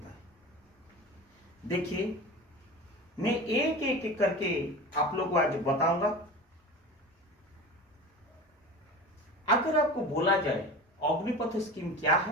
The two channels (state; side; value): normal; both; correlation 0.32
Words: है। देखिए, मैं एक एक करके आप लोग को आज बताऊंगा। अगर आपको बोला जाए अग्निपथ स्कीम क्या